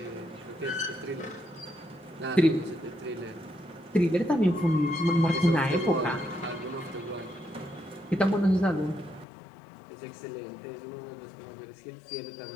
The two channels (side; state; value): right; drops out; at 9.2 s